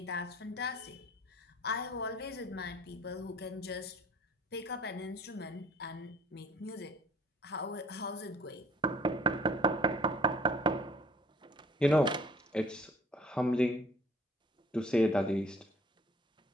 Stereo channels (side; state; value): both; normal; correlation 0.54